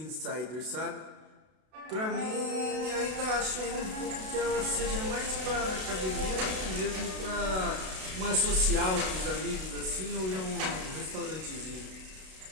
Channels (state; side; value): late; left; 32 ms